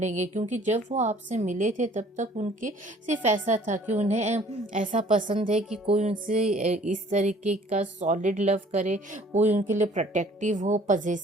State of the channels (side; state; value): both; normal; correlation 0.55